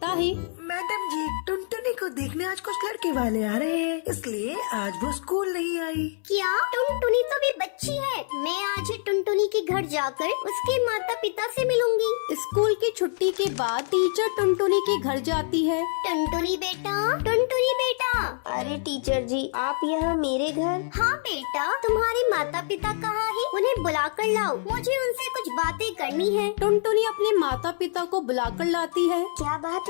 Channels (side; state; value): right; silent; 61 dB below the other